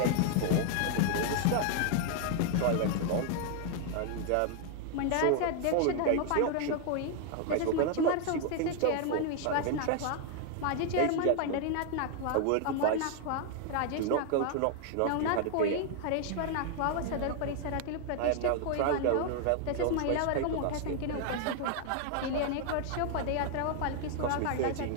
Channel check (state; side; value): different; both; correlation 0.00